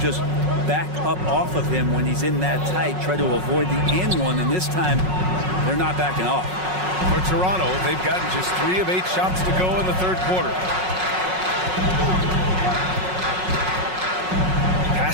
back up off of him when he's in that tight, try to avoid the and one, and this time they're not backing off. For Toronto, they've gotten just 3 of 8 shots to go in the third quarter.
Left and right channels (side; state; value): left; late; 5.4 ms